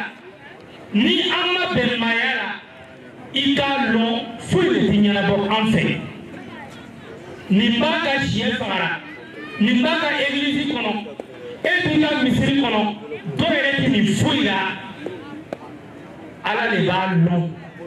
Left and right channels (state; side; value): identical; both; correlation 1.00